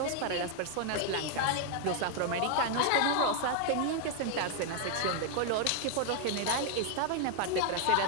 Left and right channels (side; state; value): both; different; correlation 0.00